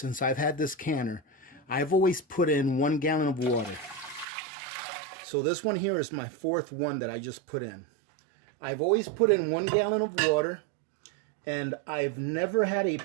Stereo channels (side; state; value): left; drops out; at 4.2 s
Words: I've had this canner, I've always put in 1 gallon of water. So this one here is my 4th one that I just put in. I've always put in 1 gallon of water, and I've never had a